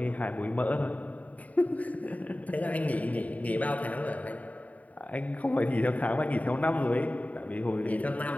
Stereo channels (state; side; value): late; right; 0.070 ms